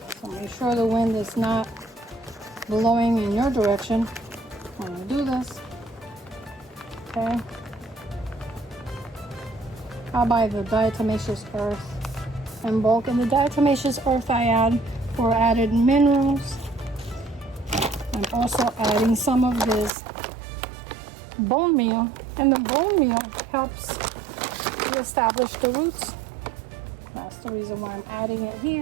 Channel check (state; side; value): drops out; left; at 19.9 s